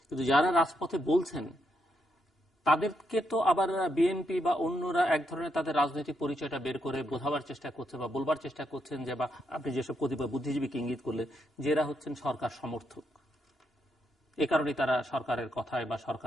কিন্তু যারা রাজপথে বলছেন তাদেরকে তো আবার বিএনপি বা অন্যরা এক ধরনের তাদের রাজনৈতিক পরিচয়টা বের করে বোঝাবার চেষ্টা করছে বা বলবার চেষ্টা করছেন যে, বা আপনি যেসব কতিপয় বুদ্ধিজীবীকে ইঙ্গিত করলেন যে এরা হচ্ছেন সরকার সমর্থক, এ কারণে তারা সরকারের কথায় বা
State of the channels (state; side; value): normal; both; correlation 0.80